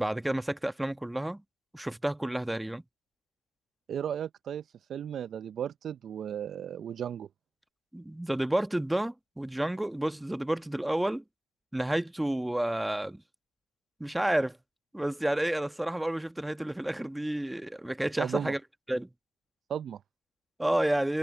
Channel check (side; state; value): both; normal; correlation 0.97